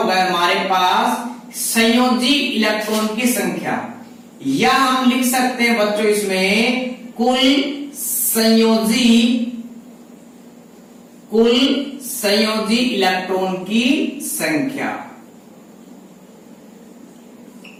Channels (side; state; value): both; identical; correlation 1.00